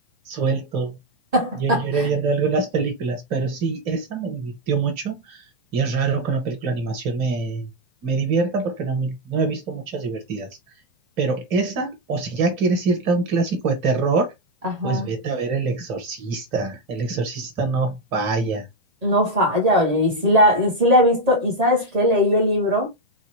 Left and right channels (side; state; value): left; late; 1.8 ms